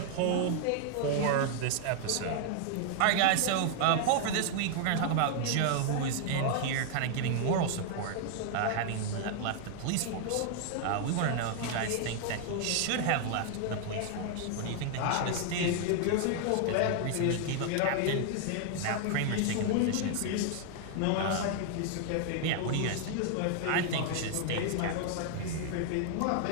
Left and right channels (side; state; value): both; different; correlation 0.00